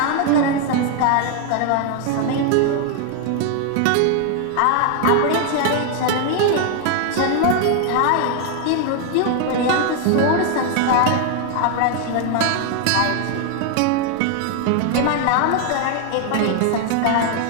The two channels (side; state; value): both; different; correlation 0.00